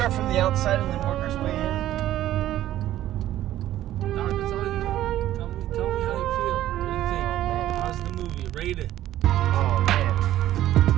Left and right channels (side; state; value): left; quieter; 13.4 dB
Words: from the outside and then work our way in? Dog, that's all you know. Tell me how you feel. What do you think? How's the movie? Rate it. Oh man.